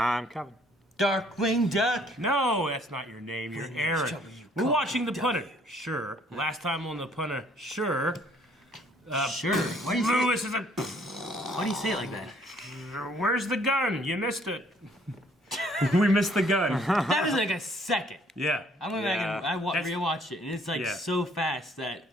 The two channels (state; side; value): normal; both; correlation 0.62